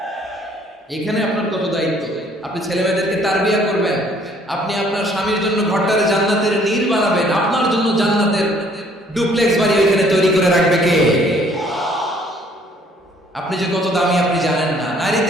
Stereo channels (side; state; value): both; normal; correlation 0.61